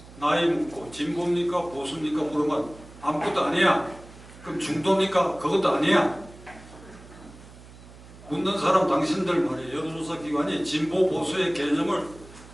나이 묻고 진보입니까 보수입니까 물으면 아무것도 아니야. 그럼 중도입니까? 그것도 아니야. 묻는 사람 당신들 말이에요. 여론조사 기관이 진보 보수의 개념을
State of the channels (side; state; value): right; noise; hum, 20 dB below the sound